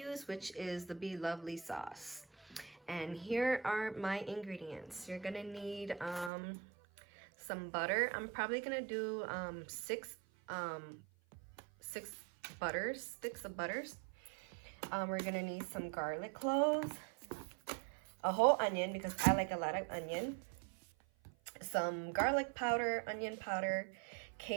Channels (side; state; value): left; drops out; at 6.3 s